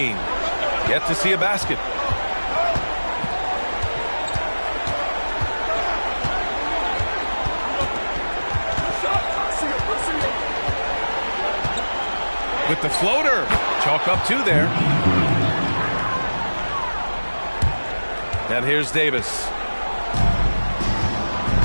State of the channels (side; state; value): both; inverted; correlation -1.00